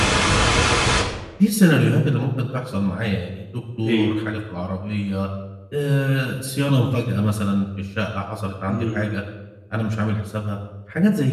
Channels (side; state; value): both; identical; correlation 1.00